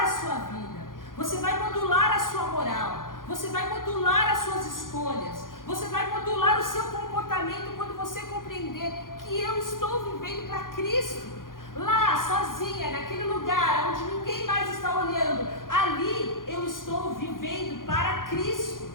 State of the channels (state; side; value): late; right; 0.90 ms